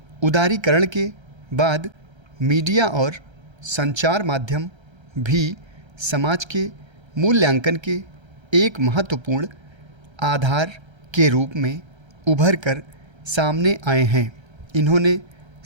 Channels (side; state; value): left; late; 1.3 ms